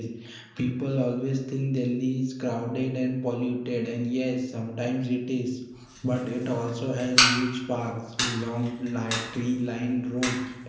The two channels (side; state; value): both; identical; correlation 1.00